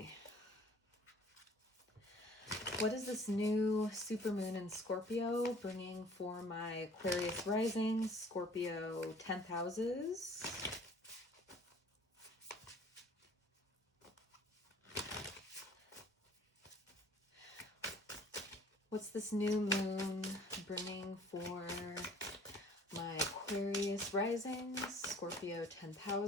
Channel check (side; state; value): both; normal; correlation 0.51